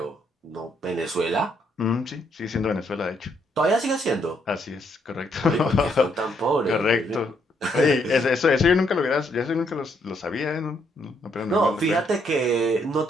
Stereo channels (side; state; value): both; normal; correlation 0.73